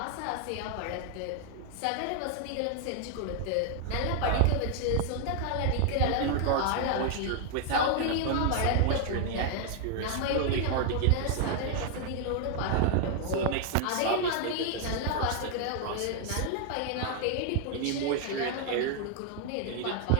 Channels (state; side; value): different; both; correlation 0.00